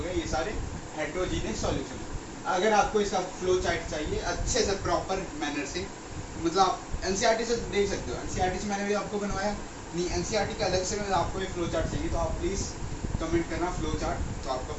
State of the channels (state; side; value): identical; both; correlation 1.00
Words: गया, ये सारे हेट्रोजीनियस सॉल्यूशन। अगर आपको इसका फ्लो चार्ट चाहिए अच्छे से प्रॉपर मैनर से, मतलब आप एनसीईआरटी से देख सकते हो, एनसीईआरटी से मैंने भी आपको बनवाया नहीं, एनसीईआरटी का अलग से मैं आपको एक फ्लो चार्ट चाहिए तो आप प्लीज़ कमेंट करना फ्लो चार्ट, तो आपका